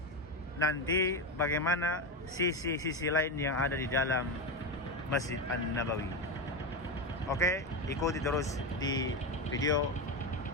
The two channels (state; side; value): normal; both; correlation 0.14